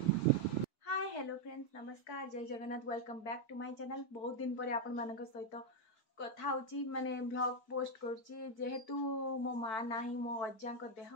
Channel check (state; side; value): late; right; 4.6 ms